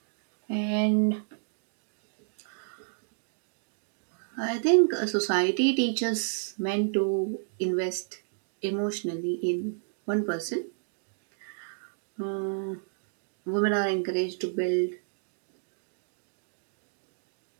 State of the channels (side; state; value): left; silent; digital silence